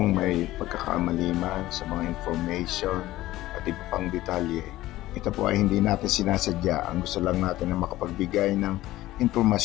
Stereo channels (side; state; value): right; quieter; 16.2 dB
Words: may pagkakamali man sa mga information at iba pang detalye, ito po ay hindi natin sinasadya. Ang gusto lang natin na makapagbigay ng